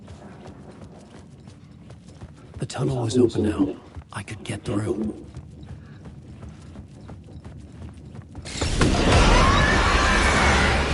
The tunnel was open now. I could get through.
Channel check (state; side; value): identical; both; correlation 1.00